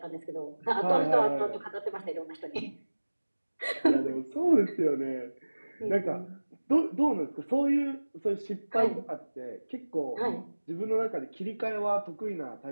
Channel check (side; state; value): both; inverted; correlation -1.00